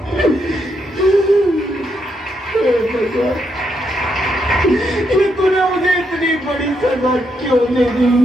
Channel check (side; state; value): both; normal; correlation 0.79